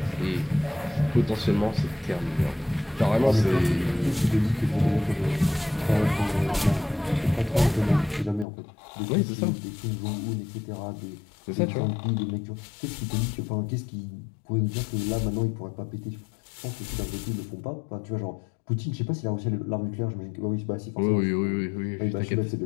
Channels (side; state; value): right; drops out; at 8.5 s